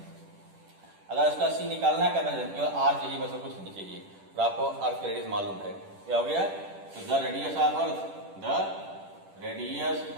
अगर उसका C निकालना है, केवल R चाहिए, बस कुछ नहीं चाहिए, तो आपको अर्थ रेडियस मालूम है, क्या हो गया, तो द रेडियस ऑफ अर्थ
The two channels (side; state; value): left; late; 10 ms